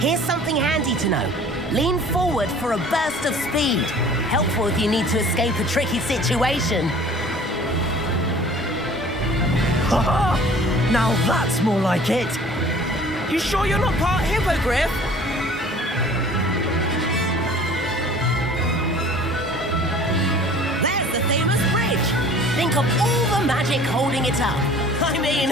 something handy to know. Lean forward for a burst of speed. Helpful if you need to escape a tricky situation. Now that's more like it. You sure you're not part hippogriff? There's the famous bridge. Think of all the magic holding it up. I mean,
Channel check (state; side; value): normal; both; correlation 0.48